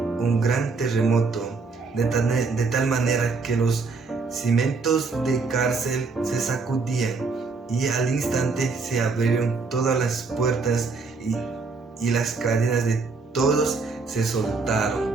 gran terremoto, de tal manera que los cimientos de cárcel se sacudían, y al instante se abrieron todas las puertas y las cadenas de todos se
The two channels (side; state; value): left; quieter; 4.2 dB